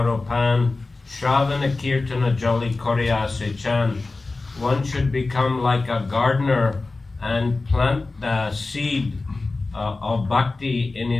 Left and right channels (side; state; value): right; quieter; 3.5 dB